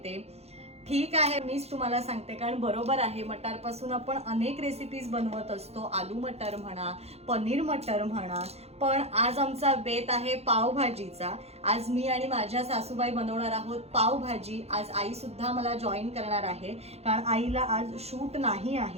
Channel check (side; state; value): left; late; 0.30 ms